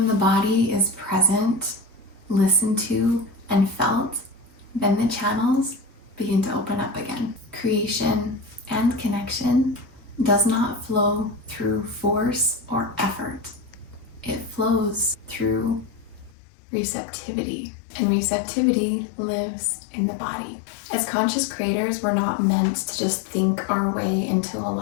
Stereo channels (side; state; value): right; drops out; at 16.4 s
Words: the body is present, listened to, and felt, then the channels begin to open up again. Creation and connection does not flow through force or effort. It flows through receptivity, and receptivity lives in the body. As conscious creators, we're not meant to just think our way into